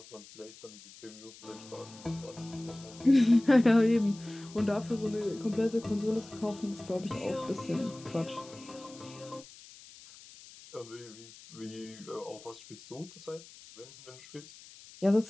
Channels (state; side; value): noise; left; hiss, 19 dB below the sound